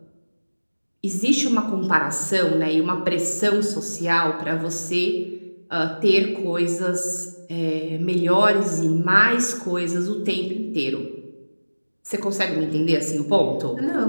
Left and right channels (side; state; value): both; inverted; correlation -1.00